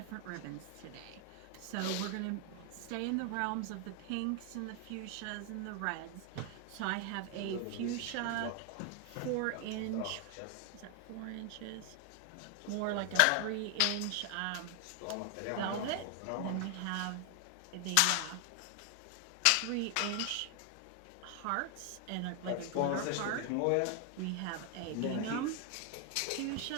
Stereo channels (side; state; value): both; different; correlation 0.00